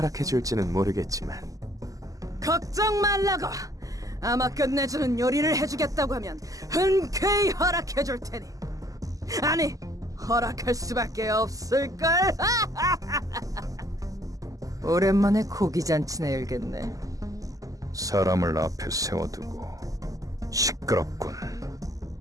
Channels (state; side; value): late; left; 0.17 ms